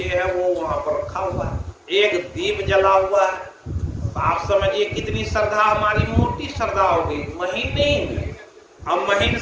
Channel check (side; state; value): both; identical; correlation 1.00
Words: है वो वहां पर रखा हुआ है, एक दीप जला हुआ है। तो आप समझिए कितनी श्रद्धा, हमारी मोटी श्रद्धा होगी, महीन नहीं। हम महीन